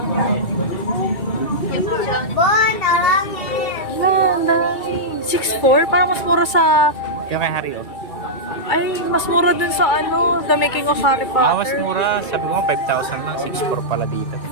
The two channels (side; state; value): right; late; 2.3 ms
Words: Landang. 6'4"? Parang mas mura sa... Yung kay Harry, oh. Ay, mas mura dun sa ano, The Making of Harry Potter. Mas mura. Sabi ko 5,000 lang. 6'4" pala dito.